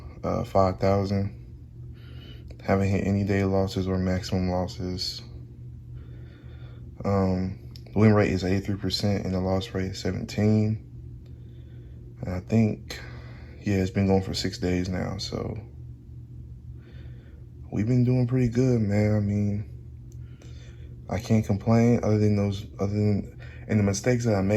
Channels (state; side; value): identical; both; correlation 1.00